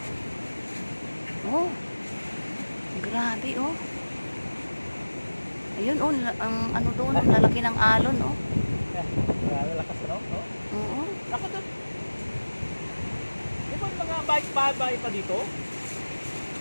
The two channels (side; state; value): both; inverted; correlation -1.00